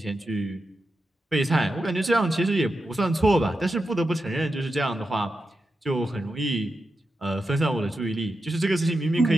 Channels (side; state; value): both; normal; correlation 0.89